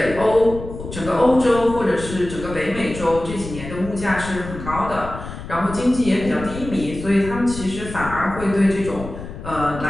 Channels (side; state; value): left; noise; rumble, 10 dB below the sound